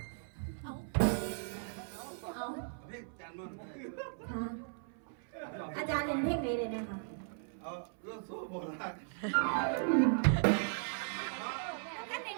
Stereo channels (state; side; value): silent; left; 53 dB below the other